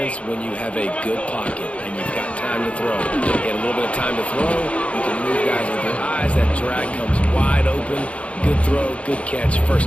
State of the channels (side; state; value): right; late; 0.063 ms